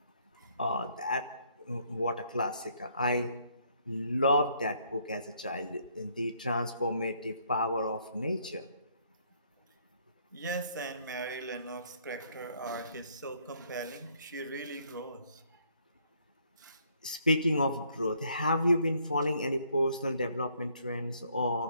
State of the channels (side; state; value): both; inverted; correlation -0.68